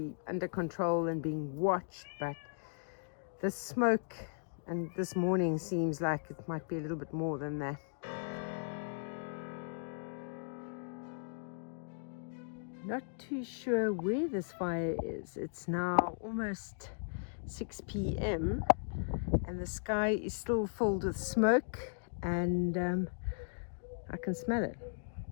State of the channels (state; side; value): silent; right; digital silence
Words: under control and being watched, but the smoke and this morning seems like it might be a little bit more than that. Not too sure where this fire is. It's now almost 6 p.m. and the sky is still filled with smoke, and I can smell it.